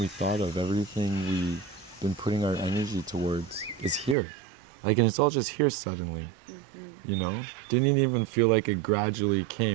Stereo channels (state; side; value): drops out; left; at 4.2 s